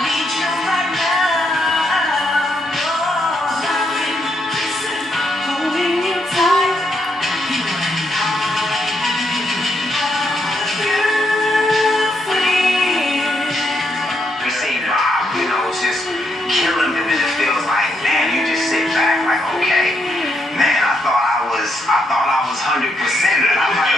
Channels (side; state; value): both; normal; correlation 0.78